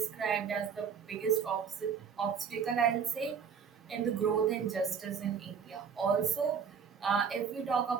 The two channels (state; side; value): quieter; left; 6.7 dB